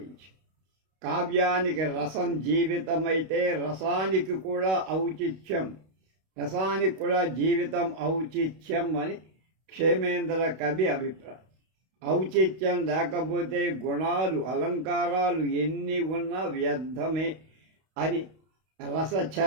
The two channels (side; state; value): left; late; 32 ms